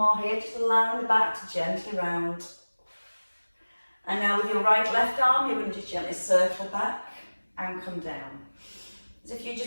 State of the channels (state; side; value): inverted; both; correlation -1.00